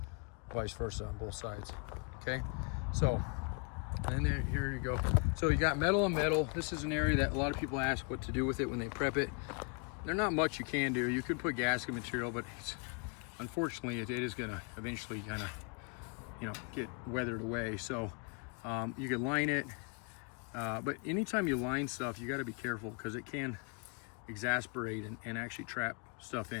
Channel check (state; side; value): quieter; right; 35.8 dB